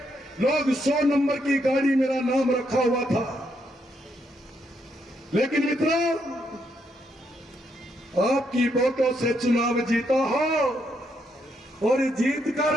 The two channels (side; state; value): both; normal; correlation 0.77